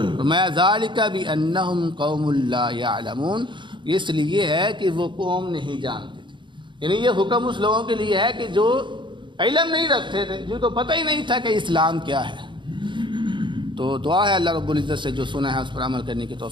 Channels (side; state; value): left; late; 0.23 ms